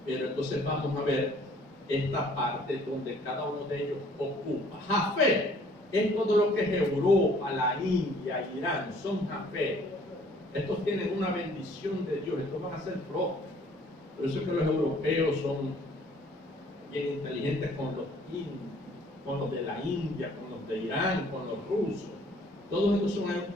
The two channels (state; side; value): normal; both; correlation 0.58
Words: pero entonces vamos a ver esta parte donde cada uno de ellos ocupa. Jafet es todo lo que es Europa, la India, Irán, son Jafet. Estos tienen una bendición de Dios, estos van a ser prósperos. Por eso es que los europeos son bien inteligentes con los de la India, con los de Irán, con los rusos. Todos estos son